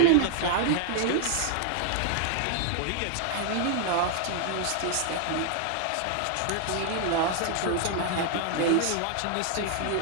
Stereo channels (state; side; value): different; both; correlation 0.00